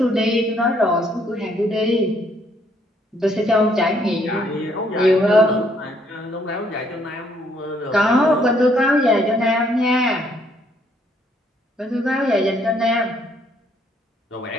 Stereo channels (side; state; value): both; normal; correlation 0.68